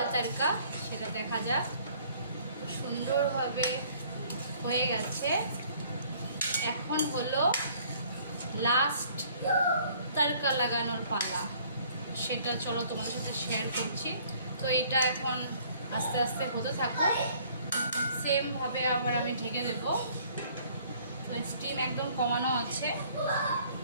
তড়কা সেটা দেখা যাক। সুন্দরভাবে হয়ে গেছে। এখন হলো লাস্ট তড়কা লাগানোর পালা, সেটা চলো তোমাদের সাথে শেয়ার করছি। তো এটা এখন আস্তে আস্তে হতে থাকো, সেমভাবে আবার আমি ঢেকে দেবো। তো স্টিম একদম কমানো আছে,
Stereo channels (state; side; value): inverted; both; correlation -0.58